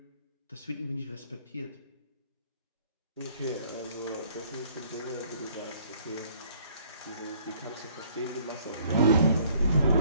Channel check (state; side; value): inverted; both; correlation -0.61